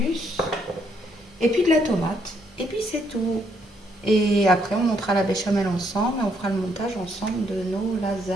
Et puis de la tomate. Et puis c'est tout. Et après, on montera la béchamel ensemble et on fera le montage ensemble de nos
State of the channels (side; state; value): both; normal; correlation 0.72